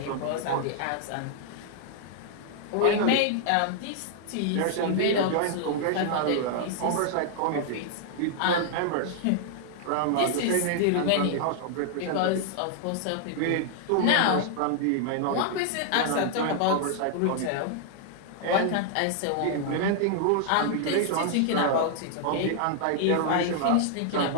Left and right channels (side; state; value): both; different; correlation -0.01